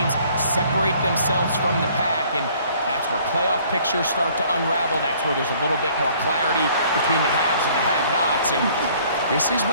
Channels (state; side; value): inverted; both; correlation -0.58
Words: separate themselves from the pack, and that's where playoff pictures start to unravel. That's where there's a little bit more clarity between the haves and the have-nots. And this is